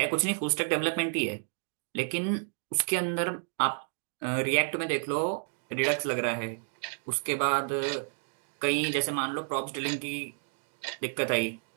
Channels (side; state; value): left; silent; digital silence